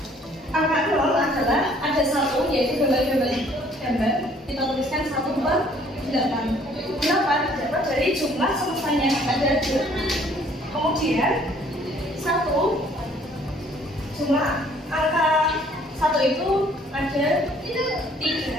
0 adalah ada 1, yaitu gambar. Kita tuliskan 1 per 8. 8 dapat dari jumlah semestanya ada 2. Kemudian 1, jumlah angka 1 itu ada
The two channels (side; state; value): both; normal; correlation 0.59